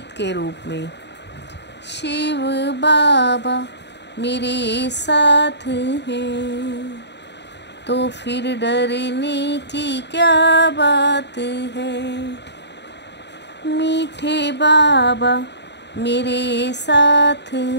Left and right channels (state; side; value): late; right; 0.50 ms